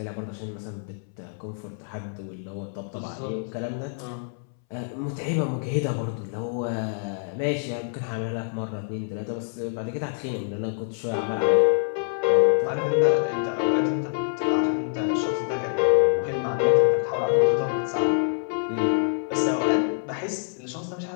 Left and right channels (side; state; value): right; silent; 61 dB below the other